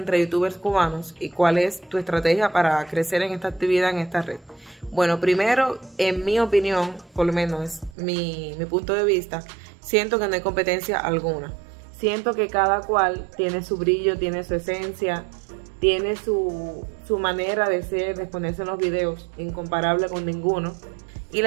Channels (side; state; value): left; drops out; at 8.0 s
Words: youtubers cubanos y cuál es tu estrategia para crecer en esta actividad, en esta red? Bueno, primero, en mi opinión, por lo menos es mi punto de vista, siento que no hay competencia alguna. Siento que cada cual tiene su brillo, tiene su esencia, tiene su manera de ser, de exponerse en los videos, incomparable con ninguno. Y